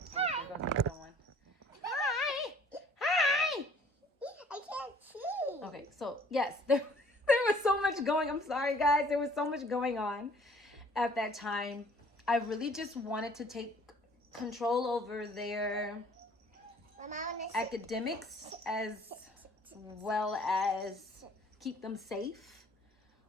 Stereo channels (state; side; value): normal; both; correlation 0.55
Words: there goes the other one. Hi. Hi. I can't see. Okay, so yes, there was so much going. I'm sorry, guys. There was so much going on at that time. I really just wanted to take control over their academics as well as keep them safe.